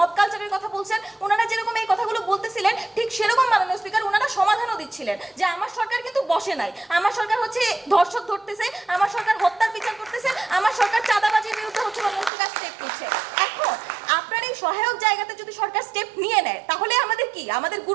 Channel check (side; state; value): left; drops out; at 12.3 s